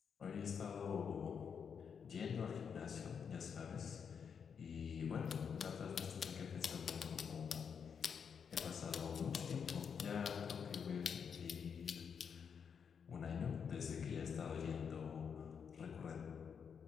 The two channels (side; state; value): right; quieter; 6.8 dB